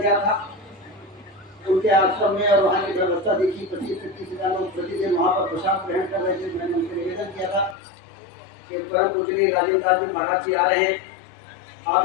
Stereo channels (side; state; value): right; drops out; at 7.8 s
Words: गया था, उनके आश्रम में, और वहाँ की व्यवस्था देखी। 25 से 30,000 लोग प्रतिदिन वहाँ पर प्रसाद ग्रहण कर रहे थे। मैंने उनसे निवेदन किया था कि परम पूजनीय राजेंद्र दास जी महाराज जी आ रहे हैं, आप